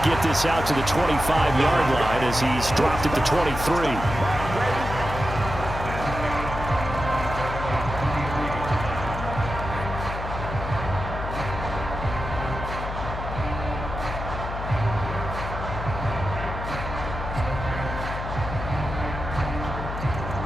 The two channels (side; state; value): left; noise; hum, 6 dB below the sound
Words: get this out to the 25-yard line as he's dropped at the 23.